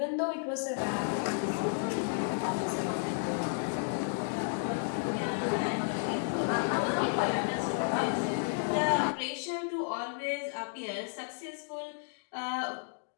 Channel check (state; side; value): silent; right; digital silence